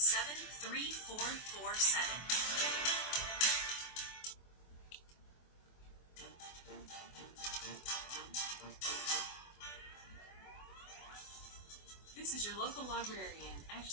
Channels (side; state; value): right; late; 24 ms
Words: This is your local librarian,